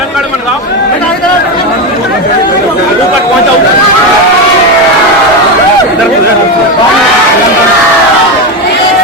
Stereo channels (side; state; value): both; normal; correlation 0.14